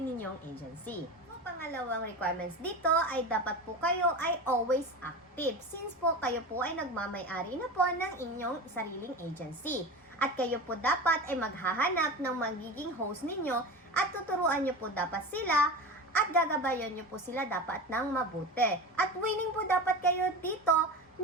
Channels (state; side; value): normal; both; correlation 0.28